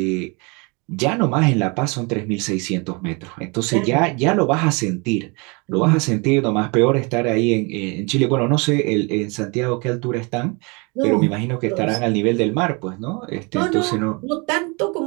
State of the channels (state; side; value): quieter; left; 30.0 dB